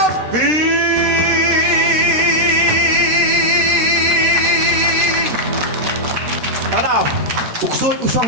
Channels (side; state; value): left; late; 13 ms